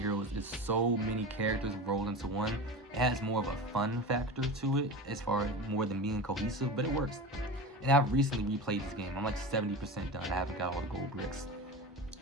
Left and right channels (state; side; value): normal; both; correlation 0.29